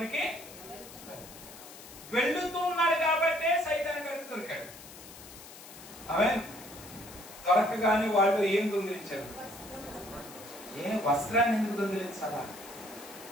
వెళ్తున్నాడు కాబట్టే సైతాను గారికి దొరికాడు. ఆమేన్. దొరకగానే వాళ్ళు ఏం దొంగిలించారు? వస్త్రాన్ని ఎందుకు దొంగిలించాలా?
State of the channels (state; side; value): noise; left; hiss, 16 dB below the sound